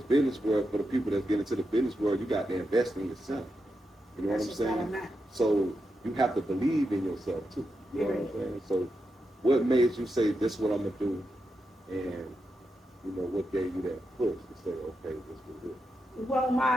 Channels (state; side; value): normal; both; correlation 0.87